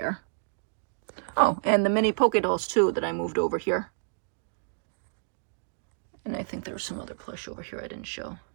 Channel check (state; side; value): silent; left; digital silence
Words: Oh, and the mini Poke Dolls too that I moved over here. And I think there was some other plush over here I didn't show.